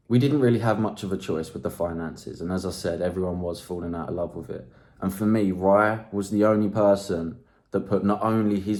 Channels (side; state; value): both; identical; correlation 1.00